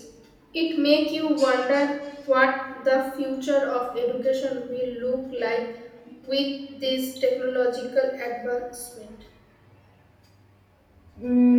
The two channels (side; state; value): both; identical; correlation 1.00